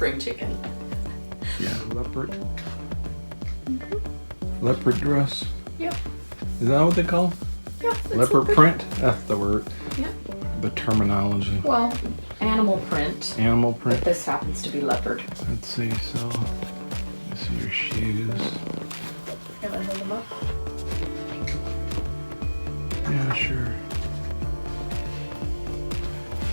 chicken. Yeah, leopard. Leopard dress. Yep. Is that what they call them? Yeah. Leopard print? That's the word. Yep. The terminology. Well, animal print. Animal print. But this happens to be leopard. Let's see, so let's see your shoes. Can I hold them up? Yeah, sure.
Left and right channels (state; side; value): inverted; both; correlation -1.00